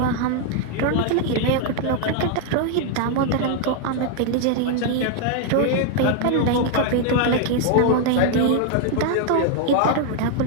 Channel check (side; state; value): both; different; correlation 0.00